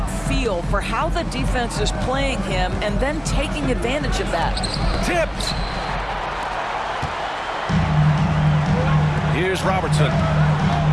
feel for how the defense is playing him and then taking advantage of that. Tipped. Here's Robertson.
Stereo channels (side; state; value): both; identical; correlation 1.00